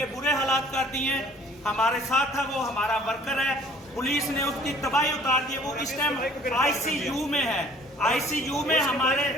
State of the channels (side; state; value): both; normal; correlation 0.53